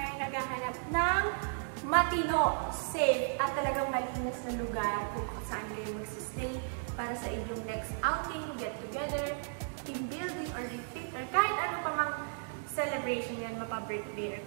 naghahanap ng matino, safe, at talagang malinis na lugar kung saan kayo magsistay para sa inyong next outing, get together, team building, or retreat, or kahit ano pa mang celebration yan, mapa-birthday or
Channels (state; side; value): silent; left; digital silence